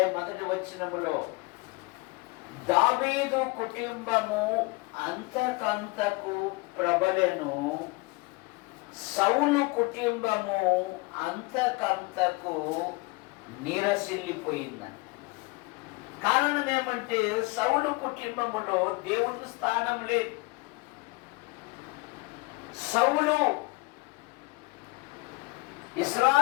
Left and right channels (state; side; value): quieter; right; 25.3 dB